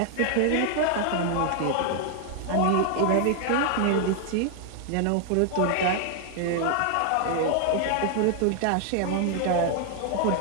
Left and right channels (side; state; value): both; different; correlation 0.00